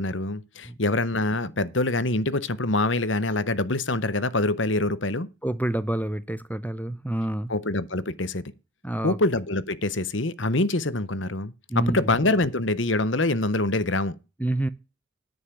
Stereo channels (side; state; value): both; normal; correlation 0.30